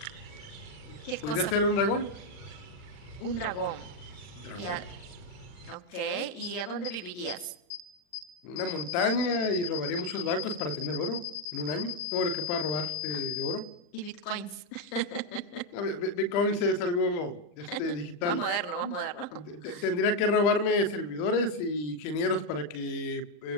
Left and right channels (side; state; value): right; late; 40 ms